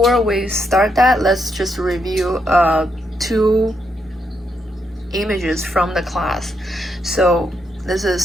we start that, let's just review two images from the class. So this is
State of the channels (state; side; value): normal; both; correlation 0.79